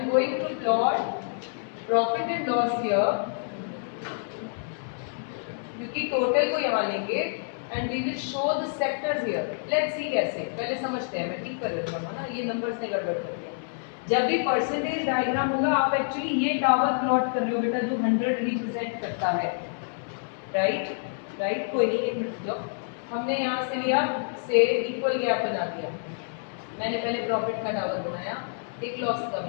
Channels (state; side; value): silent; right; digital silence